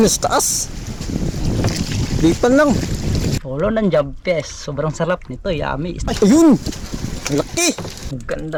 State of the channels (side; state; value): both; identical; correlation 1.00